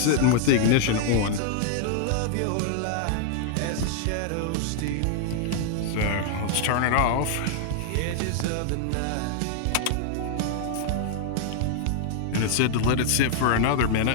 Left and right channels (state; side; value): different; both; correlation 0.00